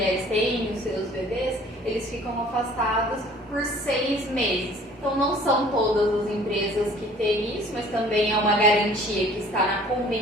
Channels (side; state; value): both; normal; correlation 0.52